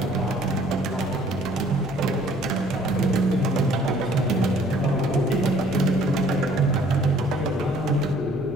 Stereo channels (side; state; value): right; noise; hum, 23 dB below the sound